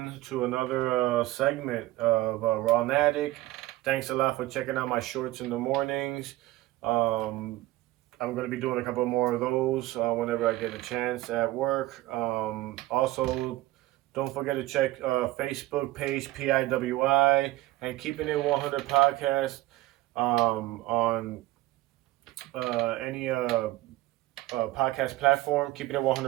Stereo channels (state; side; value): quieter; left; 17.2 dB